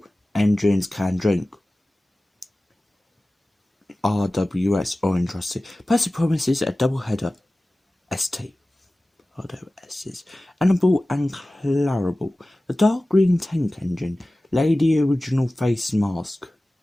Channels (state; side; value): normal; both; correlation 0.97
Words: Engines Can Drink. RWS Orange Rusty. Percy promises a double header. ST. RWS's. Annabelle and Clarabelle. The Dark Green Tank Engine. Lady Original Face Mask.